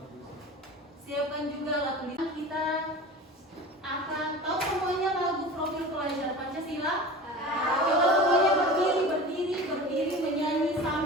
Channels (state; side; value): normal; both; correlation 0.35